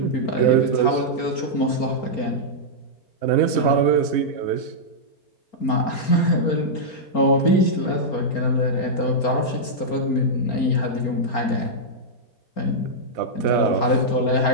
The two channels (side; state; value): right; late; 4.3 ms